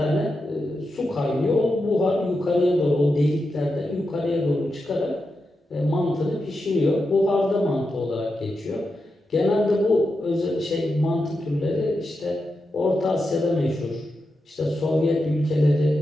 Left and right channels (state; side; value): normal; both; correlation 0.88